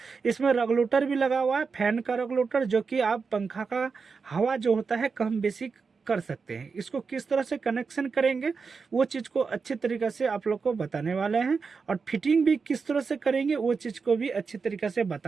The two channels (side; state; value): left; quieter; 5.0 dB